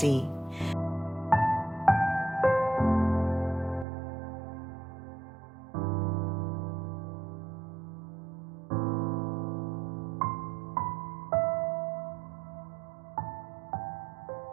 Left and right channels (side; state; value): left; drops out; at 3.9 s